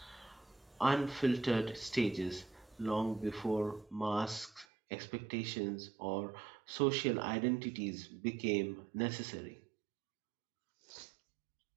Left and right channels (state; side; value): drops out; left; at 4.7 s